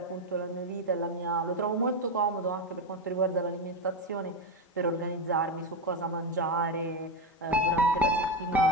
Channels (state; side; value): normal; both; correlation 0.12